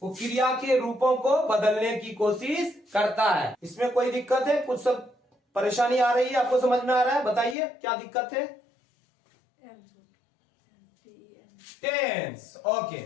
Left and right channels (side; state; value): right; drops out; at 7.6 s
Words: वो क्रिया के रूपों को बदलने की कोशिश करता है। इसमें कोई दिक्कत है, कुछ सब परेशानी आ रही है, आपको समझ में आ रहा है, बताइए क्या दिक्कत है। Tense, okay.